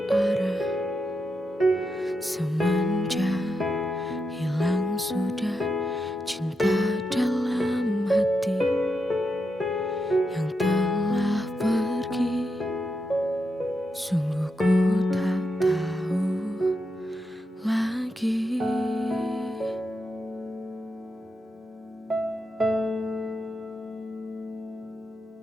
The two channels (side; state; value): both; normal; correlation 0.85